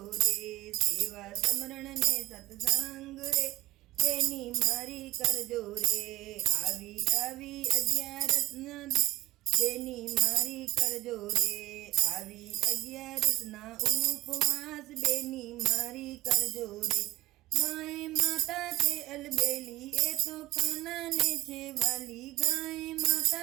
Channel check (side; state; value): left; quieter; 17.1 dB